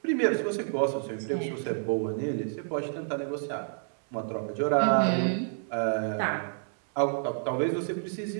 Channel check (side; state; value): left; silent; digital silence